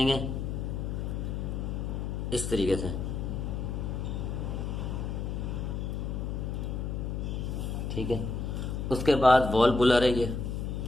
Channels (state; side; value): noise; left; hum, 2 dB below the sound